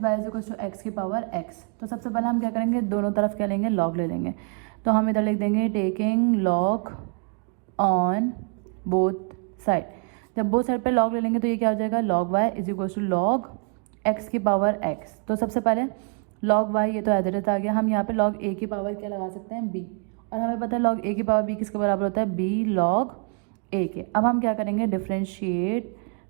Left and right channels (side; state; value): left; quieter; 38.7 dB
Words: y is equal to x की पावर x। तो सबसे पहले हम क्या करेंगे दोनों तरफ क्या लेंगे log ले लेंगे, तो हम इधर लिख देंगे taking log on both side. जब बोथ साइड पे log ले लेंगे तो ये क्या हो जाएगा log y is equal to log x की पावर x। तो सबसे पहले log y ये तो एज इट इज आ गया, हम यहाँ पे log a की पावर क्या लगा सकते हैं b, और हमें पता है log a की पावर b किसके बराबर होता है b log a के। अब हम क्या करेंगे differentiate